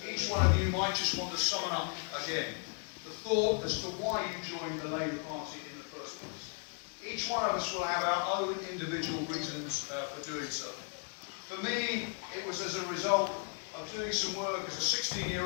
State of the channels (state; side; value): quieter; right; 39.7 dB